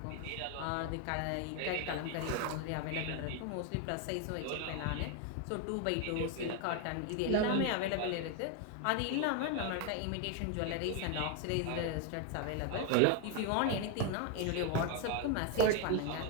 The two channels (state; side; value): different; both; correlation 0.01